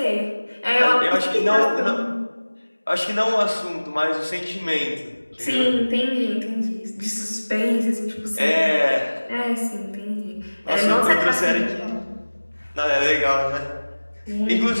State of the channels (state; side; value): inverted; both; correlation -1.00